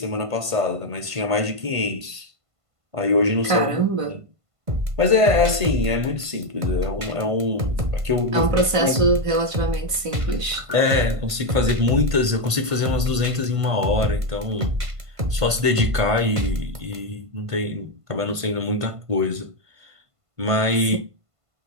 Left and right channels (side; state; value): left; late; 1.5 ms